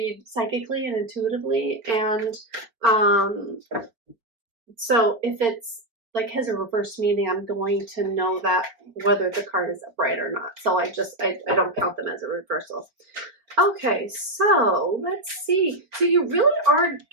psychically and intuitively, and um, so if it's like has a reverse meaning, I'm going to know that whether the card is upright or not. So I don't count them as a reversal. Okay, so let's see. So you really are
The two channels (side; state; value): left; late; 4.4 ms